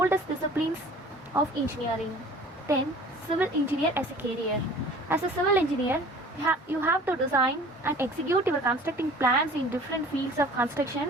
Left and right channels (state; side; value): normal; both; correlation 0.47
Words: disciplines of engineering. Then, civil engineer as a career. As a civil engineer, you have to design and execute your constructing plans in different fields of